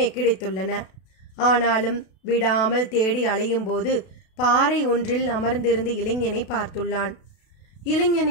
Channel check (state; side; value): late; right; 32 ms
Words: கிடைத்துள்ளன. ஆனாலும் விடாமல் தேடி அலையும் போது பாறை ஒன்றில் அமர்ந்திருந்த இளைஞனை பார்த்துள்ளான்.